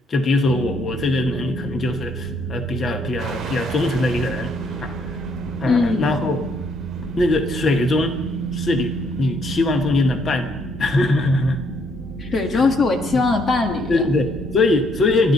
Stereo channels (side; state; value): both; normal; correlation 0.69